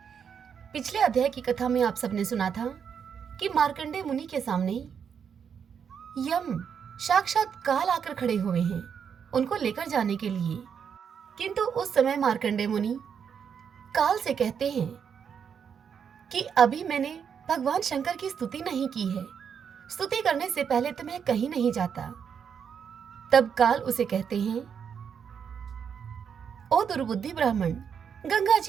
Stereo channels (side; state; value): left; quieter; 7.3 dB